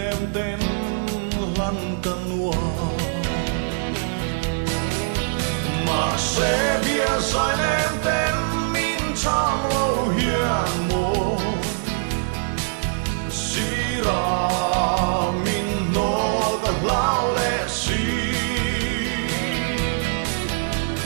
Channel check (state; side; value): silent; left; 63 dB below the other